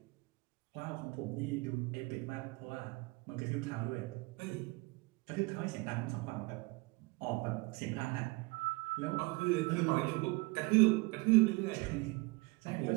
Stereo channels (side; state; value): left; quieter; 25.3 dB